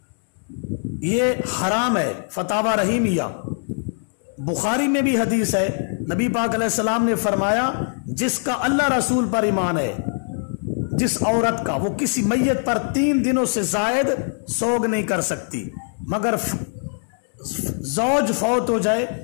یہ حرام ہے۔ فتاوی رحیمیہ بخاری میں بھی حدیث ہے، نبی پاک علیہ السلام نے فرمایا جس کا اللہ رسول پر ایمان ہے، جس عورت کا، وہ کسی میت پر 3 دنوں سے زائد سوگ نہیں کر سکتی، مگر زوج فوت ہو جائے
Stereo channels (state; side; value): silent; right; digital silence